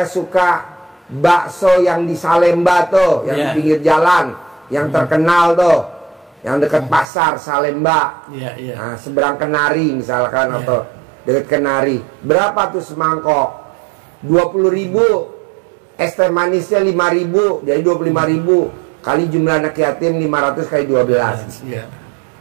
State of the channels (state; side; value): drops out; left; at 7.1 s